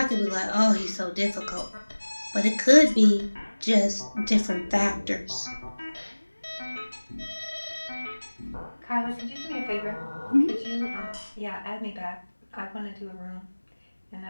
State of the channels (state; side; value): inverted; both; correlation -1.00